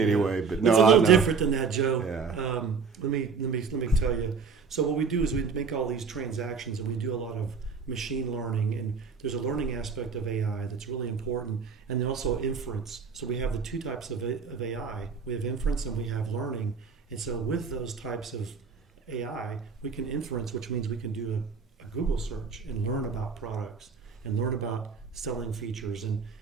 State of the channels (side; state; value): left; quieter; 5.4 dB